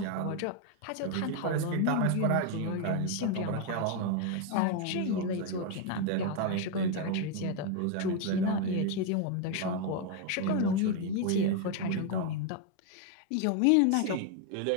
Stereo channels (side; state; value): both; different; correlation 0.01